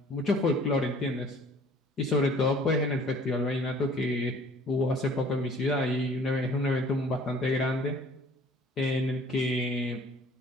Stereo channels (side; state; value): both; normal; correlation 0.53